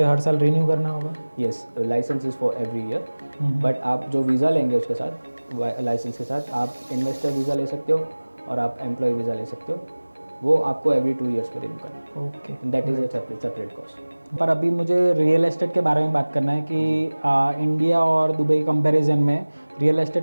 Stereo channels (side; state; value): both; inverted; correlation -1.00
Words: हर साल रिन्यू करना होगा? Yes, licence is for every year, but आप जो वीज़ा लेंगे उसके साथ लाइसेंस के साथ आप इन्वेस्टर वीज़ा ले सकते हो और आप एम्प्लॉय वीज़ा ले सकते हो। वो आपको एवरी 2 ईयर्स पे रिन्यू करना ओके। है। That is a separate cost. पर अभी मुझे रियल एस्टेट के बारे में बात करना है कि इंडिया और दुबई कंपैरिजन में रियल